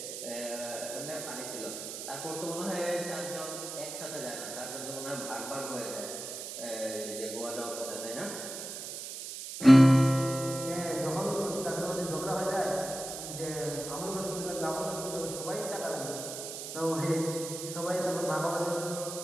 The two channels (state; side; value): noise; right; hiss, 8 dB below the sound